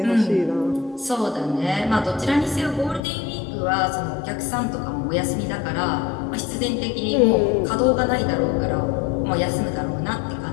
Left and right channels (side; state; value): right; drops out; at 3.0 s